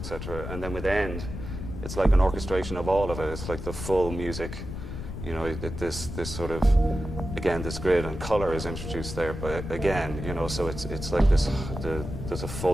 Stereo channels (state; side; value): noise; left; rumble, 7 dB below the sound